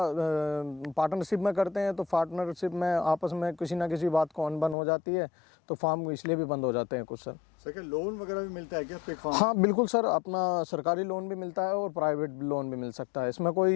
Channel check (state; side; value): drops out; right; at 4.8 s